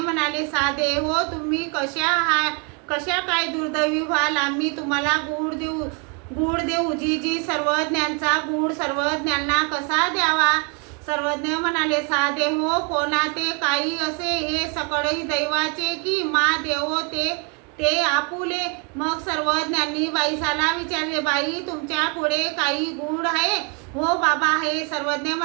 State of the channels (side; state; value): left; quieter; 35.3 dB